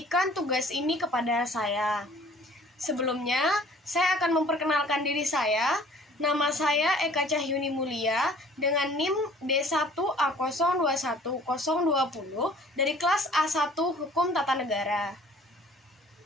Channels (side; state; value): both; normal; correlation 0.52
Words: tugas ini kepada saya. Sebelumnya, saya akan memperkenalkan diri saya. Nama saya Eka Cahyuni Mulia dengan NIM D1A021020 dari kelas A1 Hukum Tata Negara.